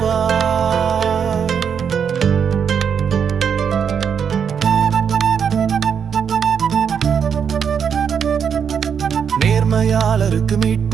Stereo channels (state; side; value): quieter; left; 7.3 dB